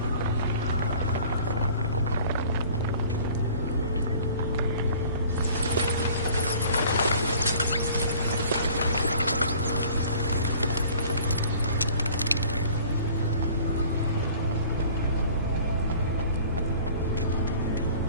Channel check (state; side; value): inverted; both; correlation -0.50